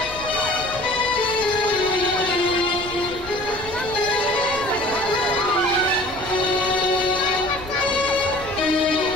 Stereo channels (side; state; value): left; noise; rumble, 16 dB below the sound